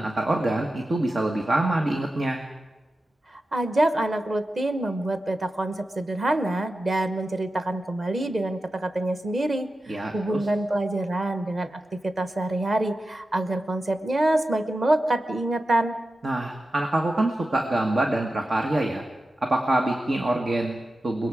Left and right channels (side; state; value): both; normal; correlation 0.92